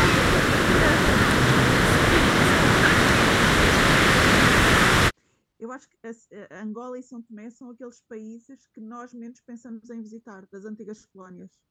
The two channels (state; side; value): identical; both; correlation 1.00